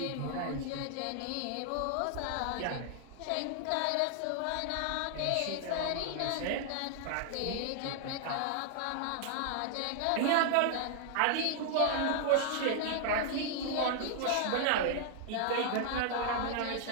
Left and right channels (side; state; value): both; different; correlation 0.00